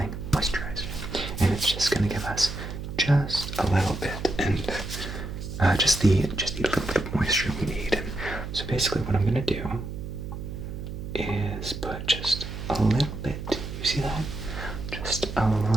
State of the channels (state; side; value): noise; right; hum, 7 dB below the sound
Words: moisturizer. And it's just gonna give us just a little bit, and just the little bit of moisture we need. And so basically what I'm gonna do is put just a little bit, you see that? Just a